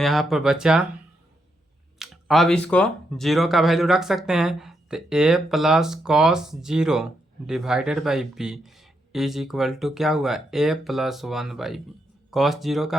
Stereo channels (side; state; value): both; normal; correlation 0.80